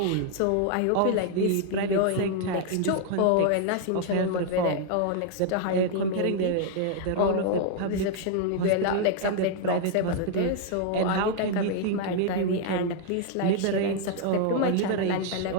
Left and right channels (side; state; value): both; different; correlation 0.00